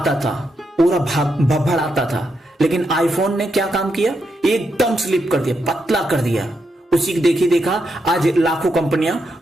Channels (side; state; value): both; normal; correlation 0.82